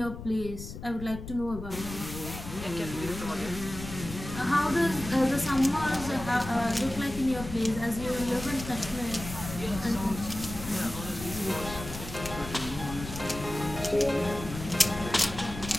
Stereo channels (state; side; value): noise; left; rumble, 10 dB below the sound